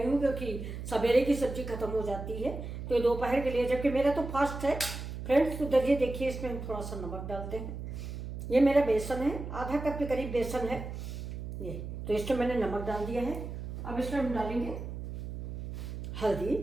हूँ क्योंकि सवेरे की सब्जी खत्म हो जाती है, तो ये दोपहर के लिए, जबकि मेरा तो फास्ट है फ्रेंड्स। तो दलिए देखिए, इसमें हम थोड़ा सा नमक डालते हैं। ये मेरा बेसन है, आधा कप के करीब बेसन है ये, तो इसमें मैंने नमक डाल दिया है। अब इसमें हम डालेंगे हल्दी,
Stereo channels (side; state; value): right; noise; hum, 7 dB below the sound